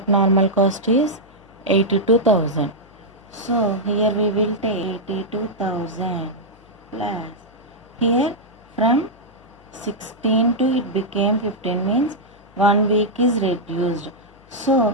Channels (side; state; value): left; noise; hum, 28 dB below the sound